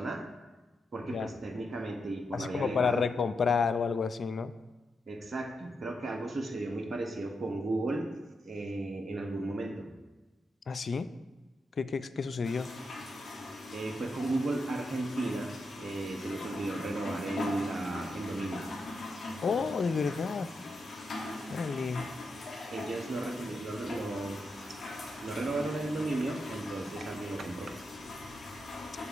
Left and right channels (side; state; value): both; normal; correlation 0.85